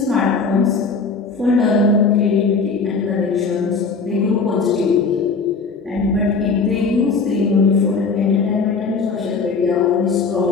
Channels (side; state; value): right; quieter; 4.7 dB